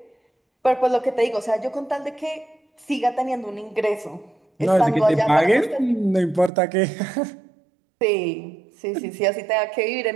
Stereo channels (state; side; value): drops out; left; at 6.5 s